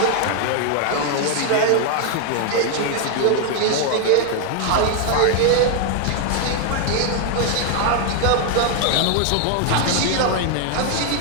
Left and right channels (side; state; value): both; different; correlation 0.00